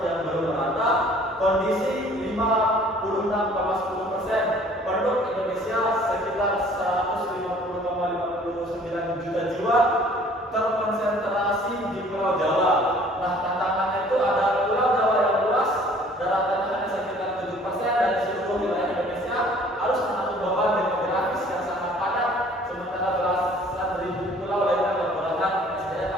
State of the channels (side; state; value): both; normal; correlation 0.54